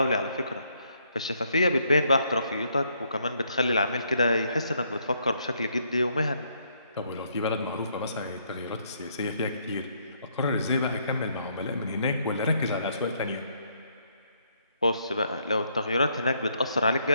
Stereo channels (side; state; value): both; inverted; correlation -0.72